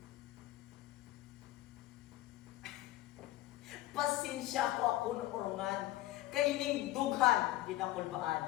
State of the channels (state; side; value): quieter; right; 16.4 dB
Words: Pasensya ko ako ng orongan, kay ning dughan